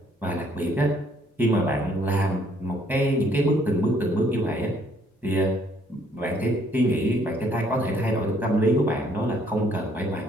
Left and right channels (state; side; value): normal; both; correlation 0.64